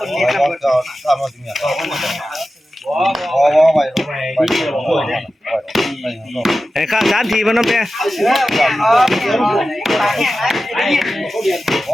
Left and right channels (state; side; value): normal; both; correlation 0.94